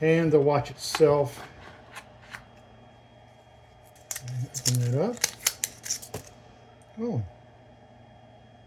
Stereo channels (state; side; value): identical; both; correlation 1.00